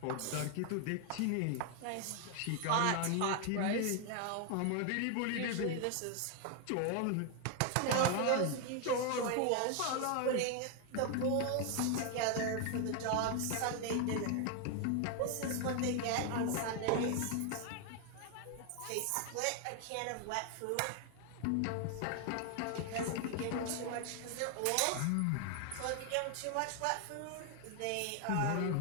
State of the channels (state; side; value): different; both; correlation 0.01